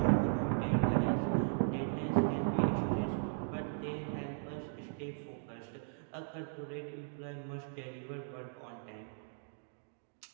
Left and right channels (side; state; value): left; silent; digital silence